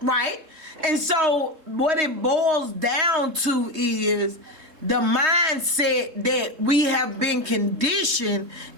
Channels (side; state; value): left; late; 3.2 ms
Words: And so what it boils down to is the mindset that we have been conditioned